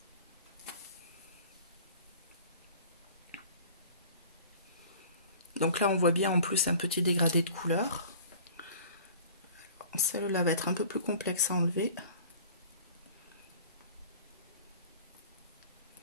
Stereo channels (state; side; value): inverted; both; correlation -0.45